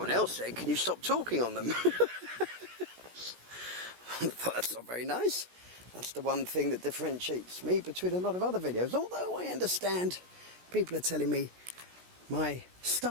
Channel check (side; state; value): left; late; 16 ms